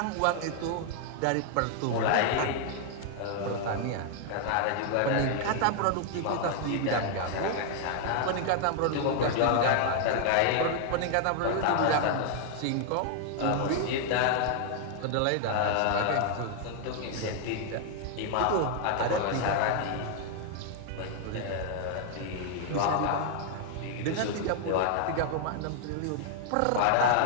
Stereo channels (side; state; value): both; different; correlation 0.00